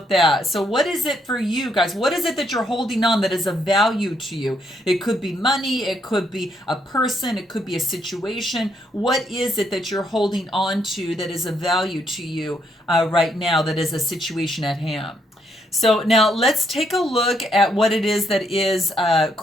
that. So what is it for you guys? What is it that you're holding on that is of value to you? It could be money, it could be a person, it could be a situation. What is it that you're holding on to that is of value to you right now, that is a situation at hand? So now let's take a look at what it is that is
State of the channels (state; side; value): normal; both; correlation 0.74